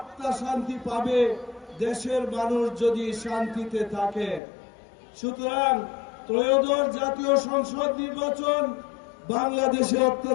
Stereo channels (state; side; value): drops out; right; at 4.4 s